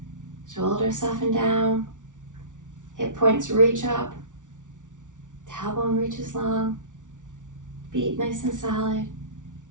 Shoulders soften down. Hip points reach up. Tailbone reaches long. Feet nice and solid.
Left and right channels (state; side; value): late; left; 0.87 ms